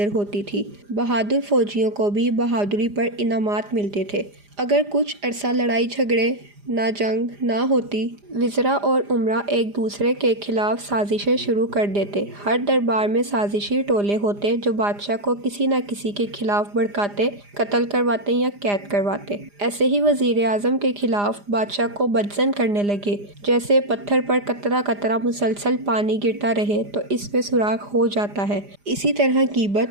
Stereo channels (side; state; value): left; late; 4.9 ms